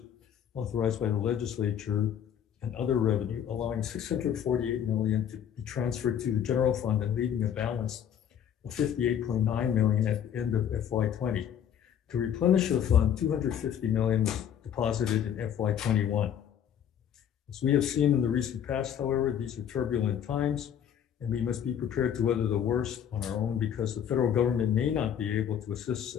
authorized by the legislature and other revenue, allowing $648 million to be transferred to the general fund and leaving a balance of $58.9 million at the end of FY20. To replenish the fund, $250 million was deposited in FY21. As we have seen in the recent past, however, these are turbulent times, and we must be prepared to weather the worst on our own because the federal government may not be able to assist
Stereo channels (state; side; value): quieter; right; 9.1 dB